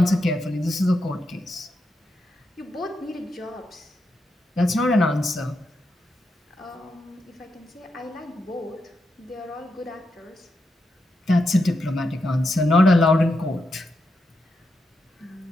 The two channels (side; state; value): both; normal; correlation 0.85